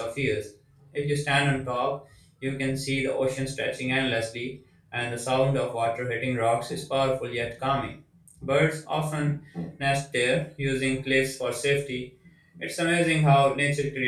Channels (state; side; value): identical; both; correlation 1.00